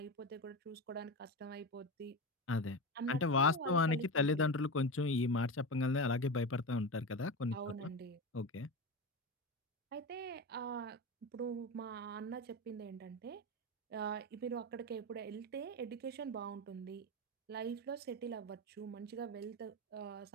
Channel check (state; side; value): normal; both; correlation 0.21